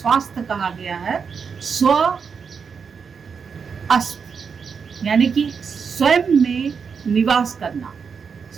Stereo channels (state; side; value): quieter; left; 6.1 dB